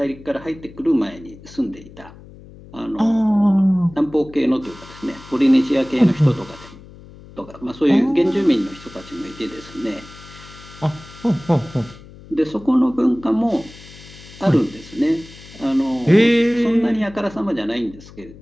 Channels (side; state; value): left; noise; hum, 20 dB below the sound